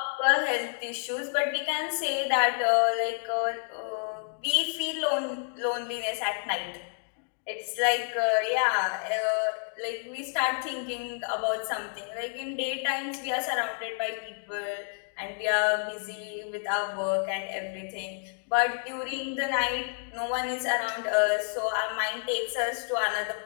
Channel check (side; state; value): right; silent; digital silence